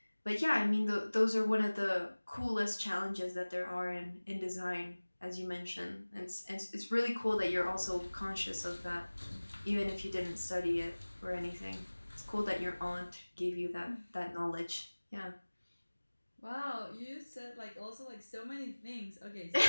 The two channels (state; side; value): inverted; both; correlation -1.00